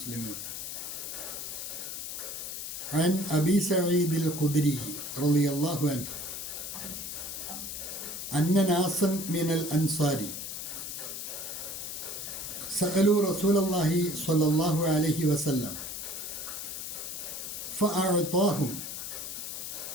عن أبي سعيد الخدري رضي الله عنه أن ناسا من الأنصار سألوا رسول الله صلى الله عليه وسلم فأعطاهم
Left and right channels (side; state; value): left; noise; hiss, 6 dB below the sound